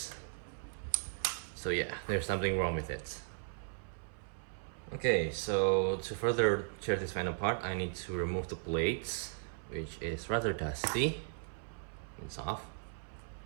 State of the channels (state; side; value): silent; left; 53 dB below the other